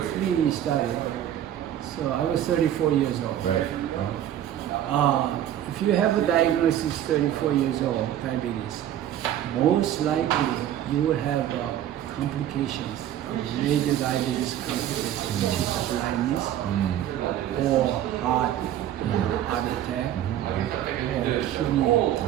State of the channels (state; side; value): quieter; left; 11.4 dB